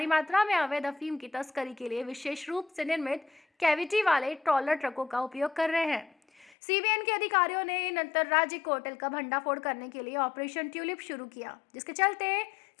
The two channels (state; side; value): drops out; right; at 6.6 s